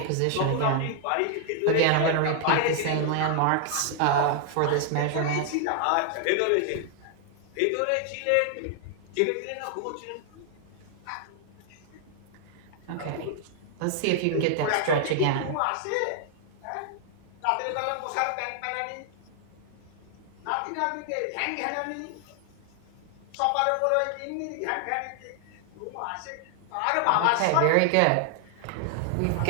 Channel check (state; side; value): different; both; correlation 0.00